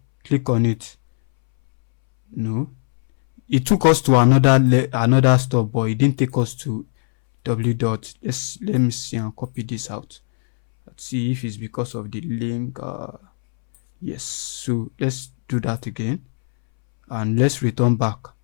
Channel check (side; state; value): right; silent; 66 dB below the other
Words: click on it. No, it took us to another stop, but it didn't take us to let me see and copy this out. Let's see if it's because of the link. Yes, so let's do that again and let's return back